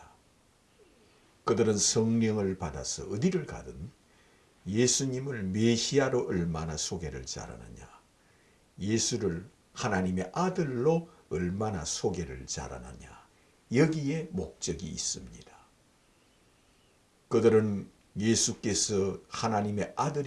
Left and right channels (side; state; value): both; identical; correlation 1.00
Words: 그들은 성령을 받아서 어디를 가든 예수님을 메시아로 얼마나 소개를 잘하느냐, 예수를 하나님의 아들로 얼마나 소개를 잘하느냐, 여기에 목적이 있습니다. 그들은 예수께서 하나님의